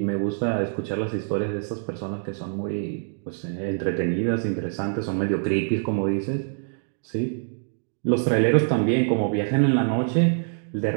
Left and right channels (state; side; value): silent; left; digital silence